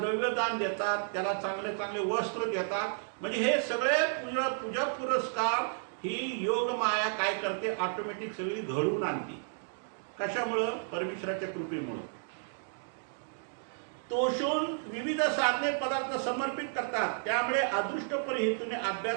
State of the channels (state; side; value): silent; left; digital silence